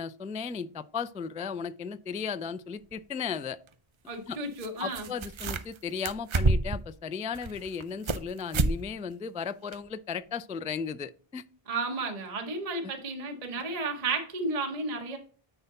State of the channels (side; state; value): left; late; 1.3 ms